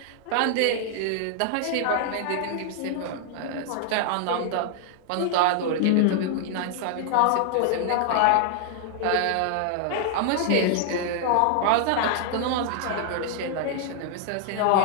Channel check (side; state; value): both; different; correlation 0.00